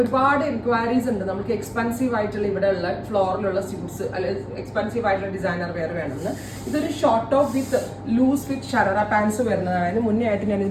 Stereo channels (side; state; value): both; identical; correlation 1.00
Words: ഒരുപാട് എൻക്വയറീസ് ഉണ്ട് നമുക്ക് എക്സ്പെൻസീവ് ആയിട്ടുള്ള ഇവിടെയുള്ള ഫ്ലോറിലുള്ള സ്യൂട്ട്സ് അല്ലെങ്കിൽ എക്സ്പെൻസീവ് ആയിട്ടുള്ള ഡിസൈനർ വെയർ വേണമെന്ന്. ഇതൊരു short top with loose fit sharara pants വരുന്നതാണ്. അതിന് മുന്നേ ആയിട്ട് ഞാൻ